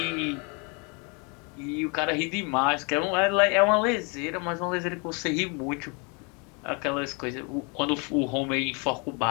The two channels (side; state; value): right; quieter; 33.0 dB